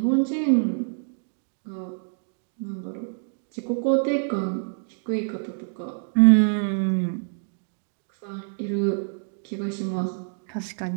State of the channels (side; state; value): left; silent; digital silence